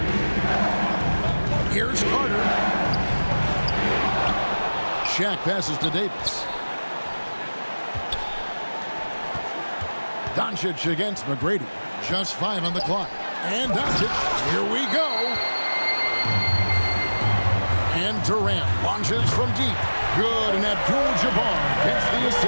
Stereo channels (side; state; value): both; inverted; correlation -1.00